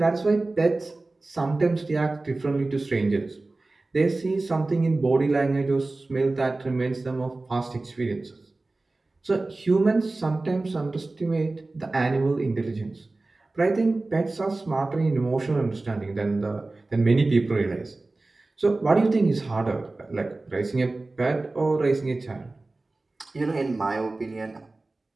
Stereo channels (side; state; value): left; quieter; 3.2 dB